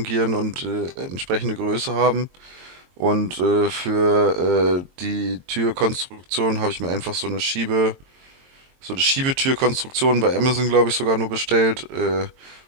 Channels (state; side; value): late; left; 22 ms